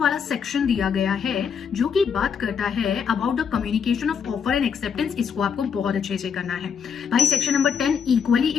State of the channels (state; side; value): quieter; right; 6.9 dB